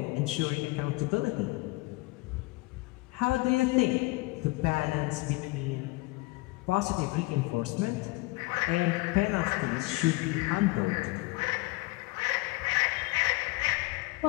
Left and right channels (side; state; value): right; quieter; 23.0 dB